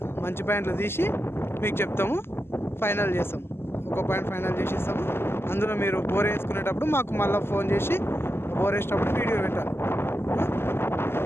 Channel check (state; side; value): late; right; 0.12 ms